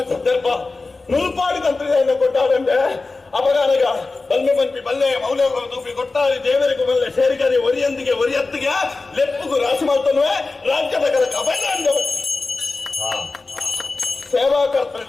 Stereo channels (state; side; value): quieter; right; 3.7 dB